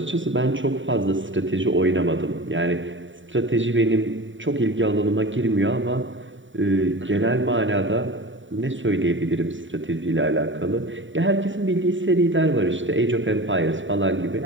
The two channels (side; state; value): left; late; 0.55 ms